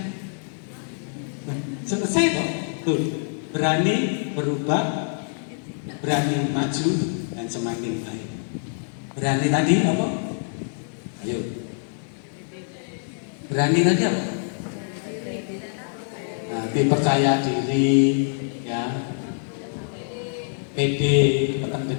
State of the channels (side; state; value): right; silent; digital silence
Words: Selesai kok. Tuh, berani berubah, berani maju, dan semakin baik. Berani tadi apa? Ayo. Berani tadi apa? Nah, percaya diri, ya. Pede, tekan